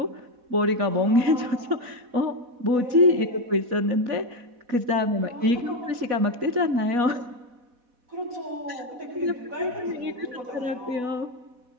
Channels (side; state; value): left; late; 4.1 ms